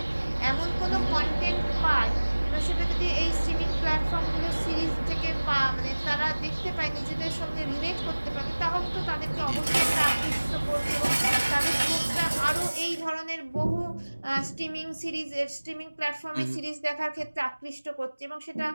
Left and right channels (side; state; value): both; inverted; correlation -1.00